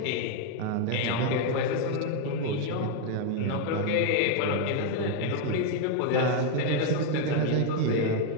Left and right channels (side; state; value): both; different; correlation 0.01